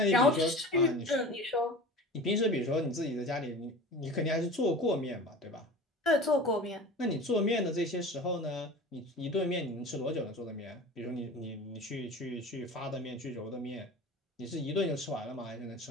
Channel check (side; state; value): both; normal; correlation 0.37